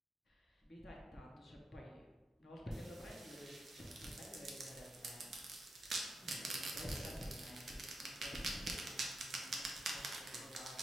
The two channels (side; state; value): both; normal; correlation 0.85